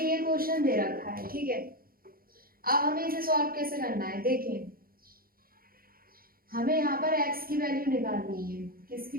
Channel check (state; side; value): late; left; 0.42 ms